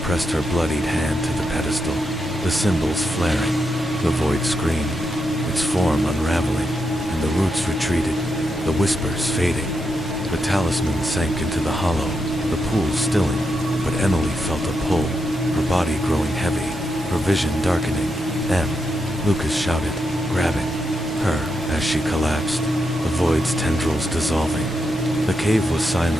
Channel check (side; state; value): both; normal; correlation 0.84